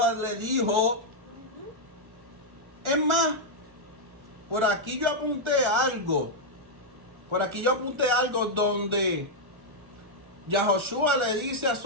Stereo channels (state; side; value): late; left; 1.4 ms